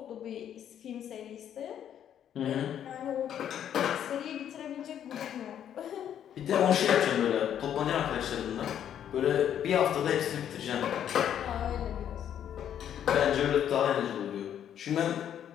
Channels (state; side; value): quieter; right; 9.8 dB